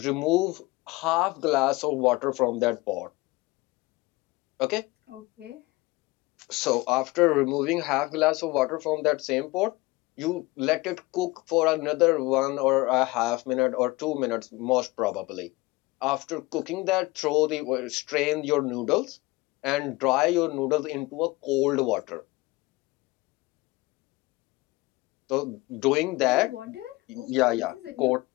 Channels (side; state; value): right; quieter; 21.8 dB